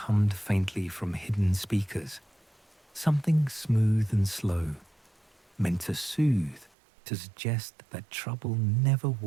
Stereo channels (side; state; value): left; drops out; at 6.7 s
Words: faintly from hidden speakers, something smooth and slow, meant to soothe, to suggest that trouble never